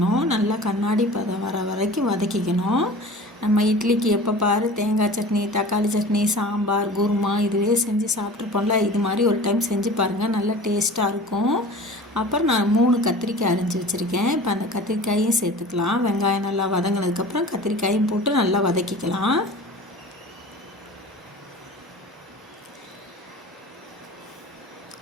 நல்லா கண்ணாடி பதம் வர வரைக்கும் வதக்கிக்கணும். நம்ம இட்லிக்கு எப்போ பாரு தேங்காய் சட்னி, தக்காளி சட்னி, சாம்பார், குருமா இதுவே செஞ்சு சாப்பிட்ருப்போம்ல. இது மாதிரி ஒரு டைம் செஞ்சு பாருங்கள், நல்லா டேஸ்ட்டாக இருக்கும். அப்புறம் நான் 3 கத்திரிக்காய் அரிஞ்சு வச்சுருக்கேன். இப்போ அந்த கத்திரிக்காயும் சேர்த்துக்கலாம். வெங்காயம் நல்லா வதங்கினதுக்கப்புறம் கத்திரிக்காயும் போட்டு நல்லா வதக்கிக்கலாம்.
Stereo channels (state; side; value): normal; both; correlation 0.39